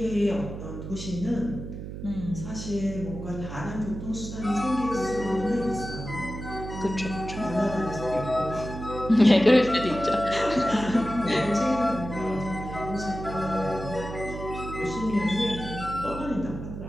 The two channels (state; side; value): noise; right; hum, 9 dB below the sound